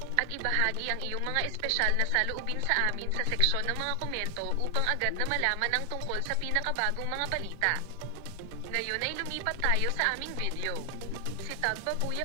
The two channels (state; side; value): different; both; correlation 0.00